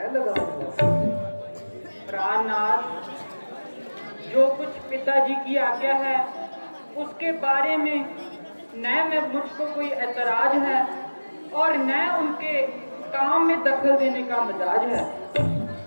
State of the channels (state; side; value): inverted; both; correlation -1.00